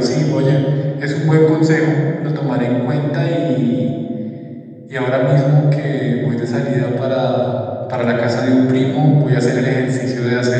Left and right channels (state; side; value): identical; both; correlation 1.00